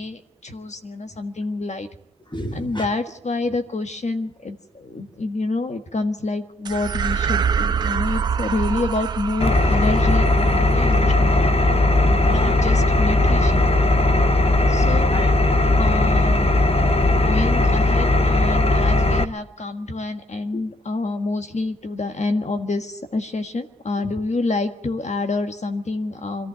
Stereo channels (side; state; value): both; normal; correlation 0.71